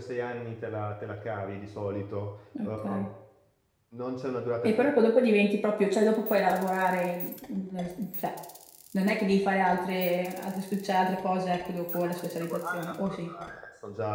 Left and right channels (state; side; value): identical; both; correlation 1.00